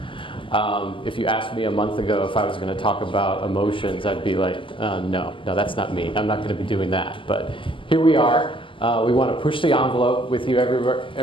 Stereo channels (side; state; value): right; late; 0.25 ms